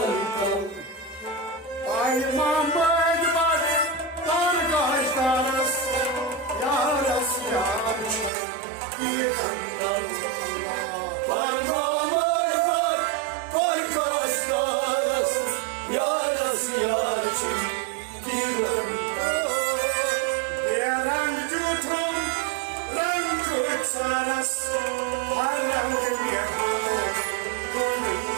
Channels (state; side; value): drops out; left; at 8.3 s